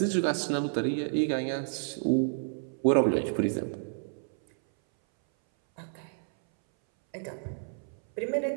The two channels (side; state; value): left; silent; 58 dB below the other